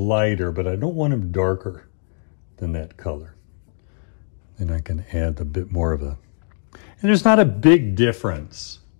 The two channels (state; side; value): silent; right; digital silence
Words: but I don't want them darker than that color. Then I can add a bit more of a, and there's not a big difference